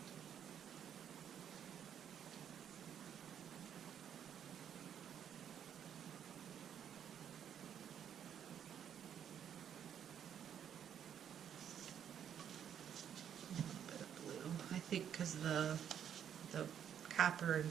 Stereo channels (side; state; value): left; quieter; 9.0 dB